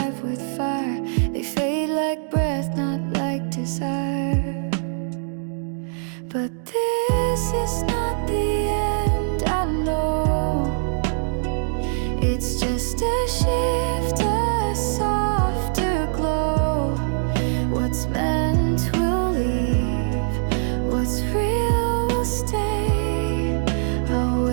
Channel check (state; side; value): silent; left; 62 dB below the other